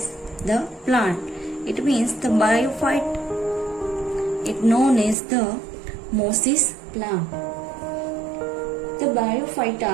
the plant. It means the bryophyte is known as the mosses plant. The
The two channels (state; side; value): drops out; left; at 5.2 s